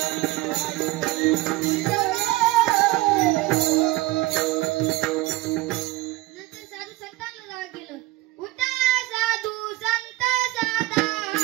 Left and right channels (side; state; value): left; quieter; 18.8 dB